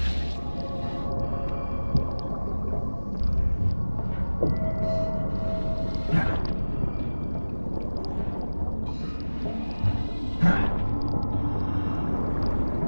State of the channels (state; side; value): inverted; both; correlation -1.00